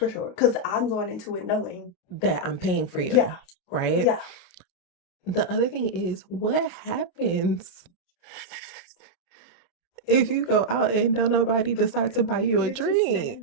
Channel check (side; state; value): right; late; 28 ms